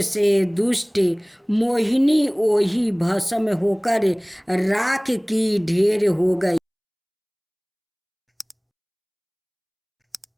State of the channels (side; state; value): both; identical; correlation 1.00